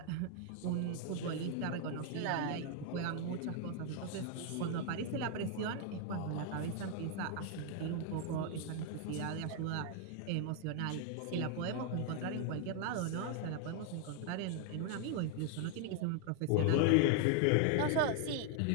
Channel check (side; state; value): both; different; correlation 0.00